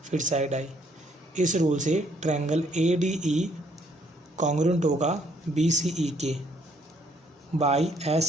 फिर साइड आई। इस रूल से triangle A D E congruent होगा बी सी ई के by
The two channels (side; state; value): both; normal; correlation 0.67